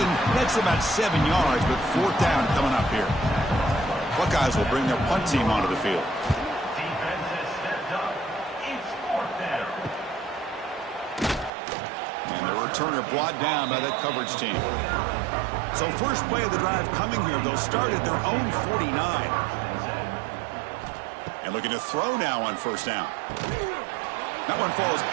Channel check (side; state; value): left; drops out; at 11.5 s